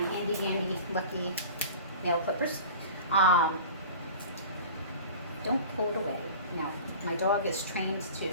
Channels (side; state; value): both; inverted; correlation -0.39